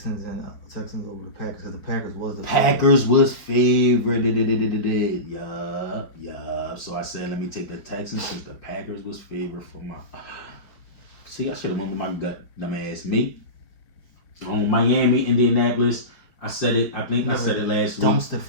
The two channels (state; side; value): late; right; 5.3 ms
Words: over the Packers because the Packers was the Packers was favored. Yeah. So I said, let me take the Texans since the Packers was favored for my. See, I should have went with my gut, dumbass me. Miami, Indianapolis. I said it. I think I said it last week. Dumpster